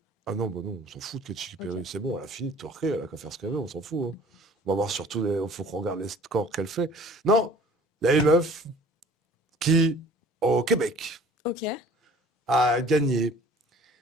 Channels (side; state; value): both; normal; correlation 0.50